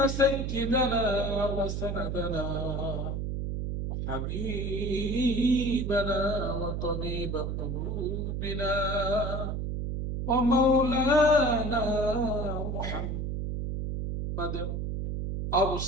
سيدنا وسندنا وحبيبنا وطبيب قلوبنا ومولانا محمد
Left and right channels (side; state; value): right; noise; hum, 2 dB below the sound